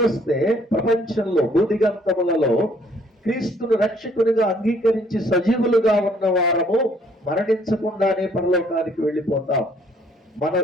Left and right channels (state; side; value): normal; both; correlation 0.63